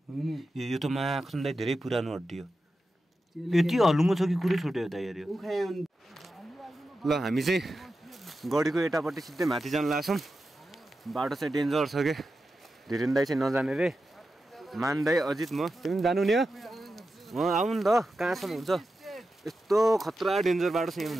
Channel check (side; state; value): both; normal; correlation 0.91